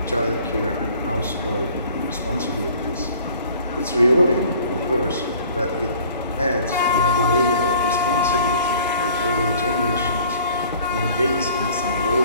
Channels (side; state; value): both; inverted; correlation -0.52